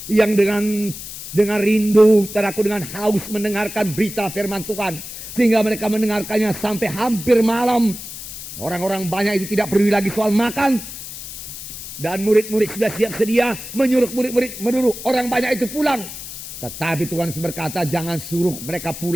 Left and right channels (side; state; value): left; noise; hiss, 11 dB below the sound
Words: Yang dengan rindu, saudaraku, dengan haus mendengarkan berita firman Tuhan. Sehingga mereka mendengarkannya sampai hampir malam. Orang-orang banyak itu tidak peduli lagi soal makan. Dan murid-murid sudah siap sedia menyuruh murid-murid menurut orang banyak itu pulang. Tetapi Tuhan berkata, jangan suruh mereka